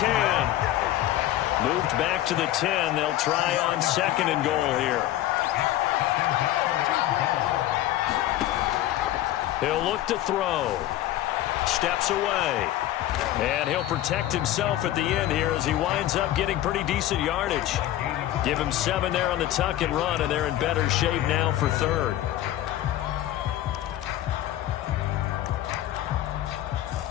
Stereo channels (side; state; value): right; quieter; 13.9 dB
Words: Moved back to the 10. They'll try on 2nd and goal here. He'll look to throw. Steps away. And he'll protect himself at the end here as he winds up getting pretty decent yardage. Give him 7 there on the tuck and run, and they're in better shape now for 3rd.